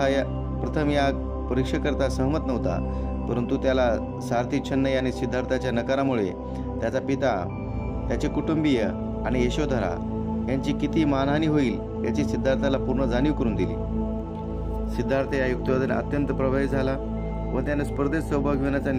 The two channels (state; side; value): identical; both; correlation 1.00